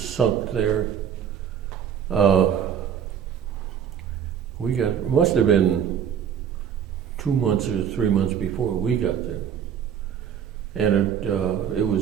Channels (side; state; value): left; quieter; 8.5 dB